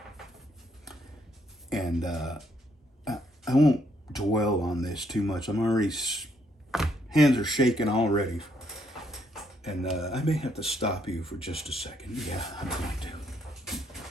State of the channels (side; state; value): both; normal; correlation 0.72